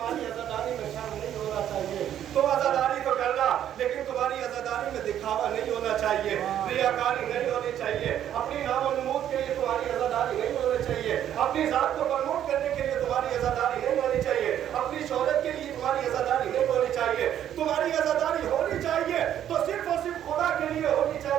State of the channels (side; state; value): left; quieter; 10.6 dB